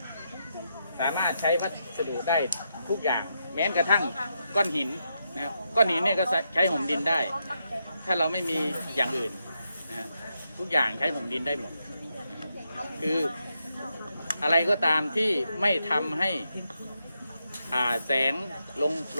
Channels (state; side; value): inverted; both; correlation -0.83